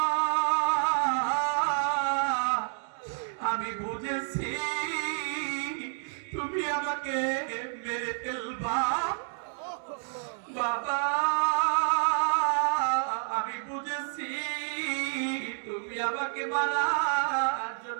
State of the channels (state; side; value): silent; left; digital silence